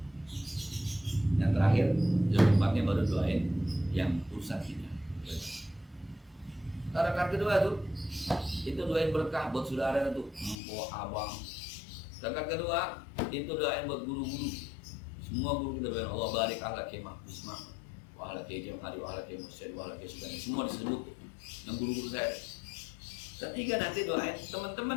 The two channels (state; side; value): drops out; right; at 10.6 s